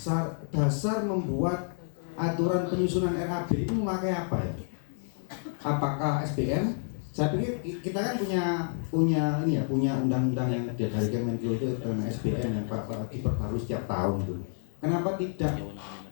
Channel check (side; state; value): right; silent; digital silence